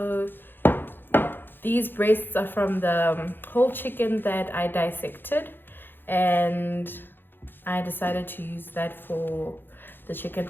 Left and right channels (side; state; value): right; late; 0.098 ms